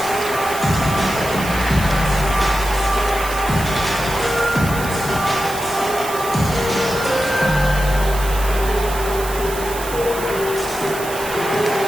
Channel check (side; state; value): right; noise; hiss, 11 dB below the sound